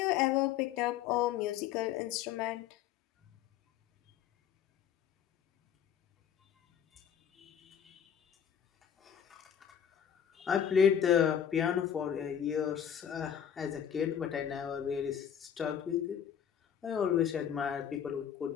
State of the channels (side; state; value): right; quieter; 8.9 dB